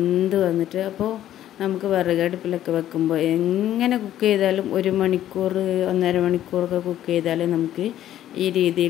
വന്നിട്ട്. അപ്പോൾ നമുക്ക് വിറകടുപ്പിലൊക്കെ വെക്കുമ്പോൾ എങ്ങനെ കുക്ക് ചെയ്താലും 1 മണിക്കൂർ 1.5 മണിക്കൂറൊക്കെ കുക്ക് ചെയ്താലേ നമുക്ക് ഈ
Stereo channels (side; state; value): right; quieter; 12.1 dB